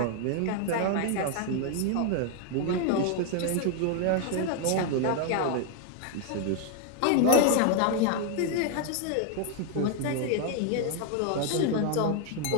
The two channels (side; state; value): both; different; correlation 0.00